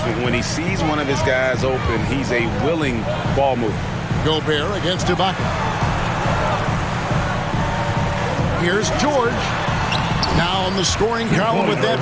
When he sees one of his guys open, he's a willing ball mover. Gobert against Ibaka. Here's George. Now on the scoring column with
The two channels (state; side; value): identical; both; correlation 1.00